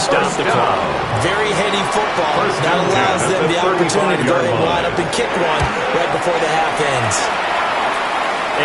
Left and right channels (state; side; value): identical; both; correlation 1.00